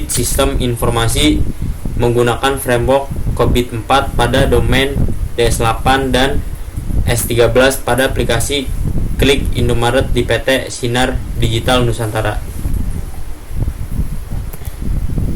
sistem informasi menggunakan framework COBIT 4 pada domain DS8 dan S13 pada aplikasi Klik Indomaret di PT Sinar Digital Nusantara.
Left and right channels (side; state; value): both; identical; correlation 1.00